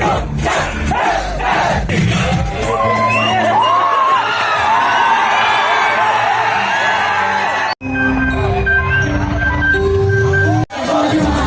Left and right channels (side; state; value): both; identical; correlation 1.00